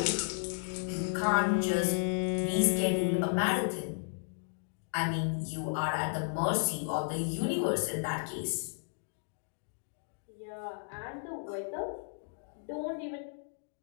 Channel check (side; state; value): right; silent; digital silence